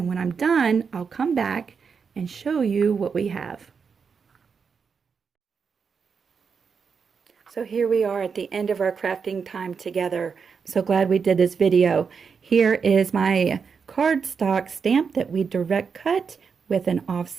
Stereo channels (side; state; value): left; quieter; 5.9 dB